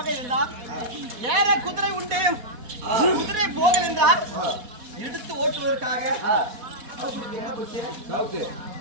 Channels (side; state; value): left; late; 4.1 ms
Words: இருந்தால் ஏற குதிரை உண்டு, குதிரை போகல் என்றால் எடுத்து ஓட்டுவதற்காக